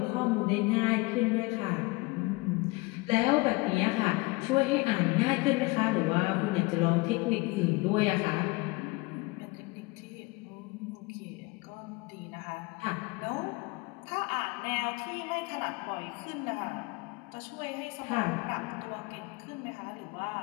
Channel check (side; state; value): right; quieter; 24.3 dB